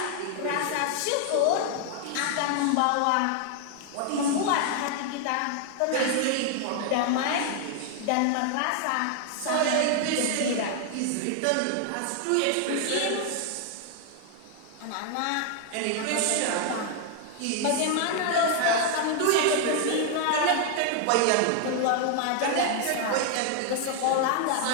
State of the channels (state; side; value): different; both; correlation 0.00